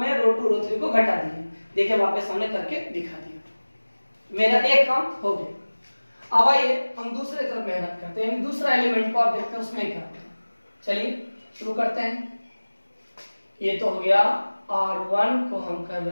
रो 2 रो 3 को घटा दिए। देखिए वापस हमने करके दिखा दिया, मेरा एक काम हो गया। अब आइए हम दूसरे तरफ मेहनत करते हैं, दूसरा एलिमेंट को आप देखते हैं उसमें क्या है। चलिए शुरू करते हैं। ये तो हो गया R1 को हम कर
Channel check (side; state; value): both; inverted; correlation -1.00